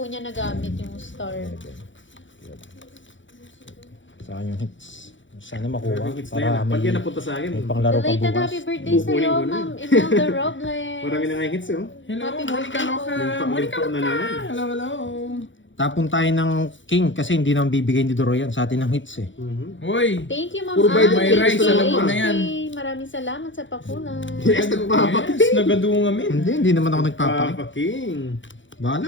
niya nagamit yung Star. 7. Saan yung hits? Sana makuha. Hits na yan. Para Pag yan may, napunta sa akin. may panglaro pa Belated bukas. happy birthday Kukunin sa'yo, ko na. Ma'am Imelda Robles. Marami na nga yung hits eh. Hello, Happy Monica birthday Loca. po. Monica Limpo na Loca. naman. Hello, hello. Tapon tayo ng king kasi hindi naman bibigay ni Doro yan sa atin ng hits eh. Uy. Thank you, Ma'am Puro bayad may Ann. rice, Thank you, alam ko na HK. yan. Maraming salamat sa pakulay. Yes, nagpapaking. Yes, nagadungamin. Hindi naman ako nagpapaki. Papaking. Bahala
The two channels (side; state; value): right; late; 0.55 ms